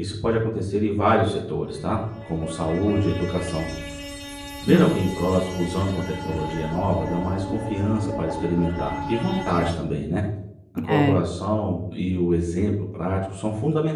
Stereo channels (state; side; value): identical; both; correlation 1.00